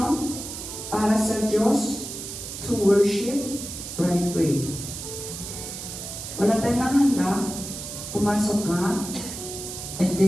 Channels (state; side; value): noise; right; hiss, 8 dB below the sound